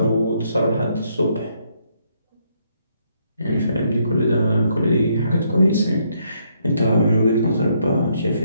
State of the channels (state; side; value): inverted; both; correlation -0.73